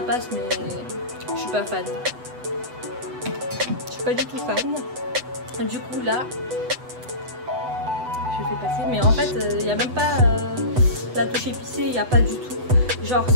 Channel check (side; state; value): left; late; 8.0 ms